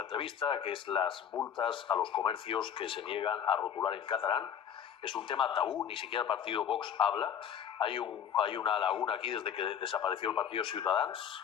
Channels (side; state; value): right; quieter; 8.6 dB